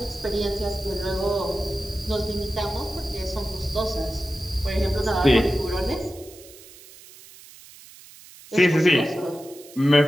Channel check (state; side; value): noise; right; hiss, 20 dB below the sound